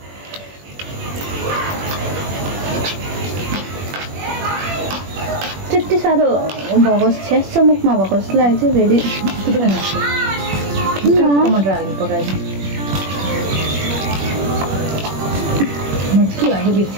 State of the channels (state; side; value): late; left; 21 ms